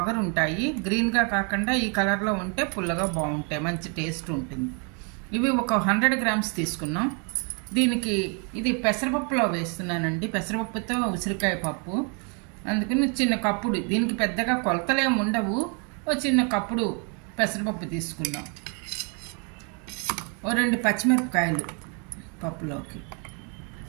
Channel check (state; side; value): quieter; left; 36.7 dB